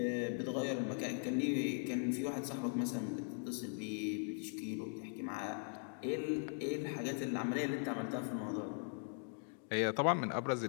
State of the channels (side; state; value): right; silent; 51 dB below the other